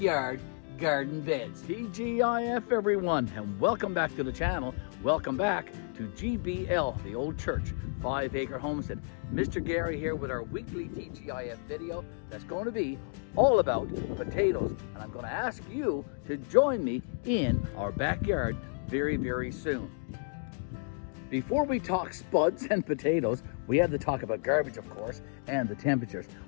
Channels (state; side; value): silent; right; 57 dB below the other